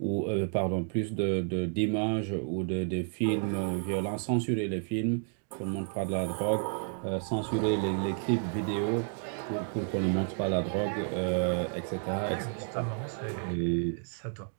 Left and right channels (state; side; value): silent; left; 57 dB below the other